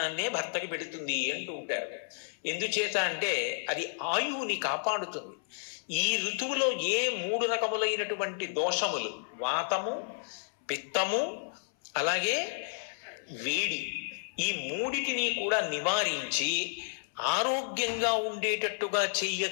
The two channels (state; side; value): silent; right; 57 dB below the other